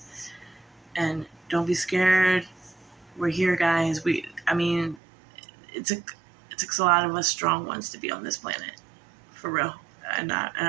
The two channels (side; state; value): left; drops out; at 5.0 s